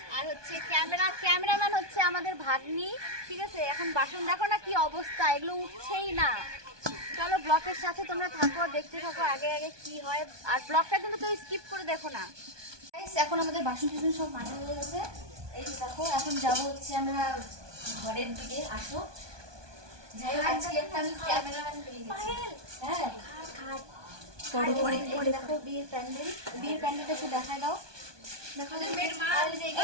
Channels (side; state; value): left; late; 1.2 ms